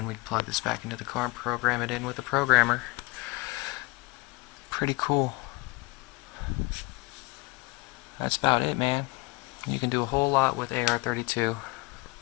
we plug this back into the car and program it in with the programmer. Pretty cool. That's about it, man. You can do a whole lot with AR32.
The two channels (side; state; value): right; quieter; 24.6 dB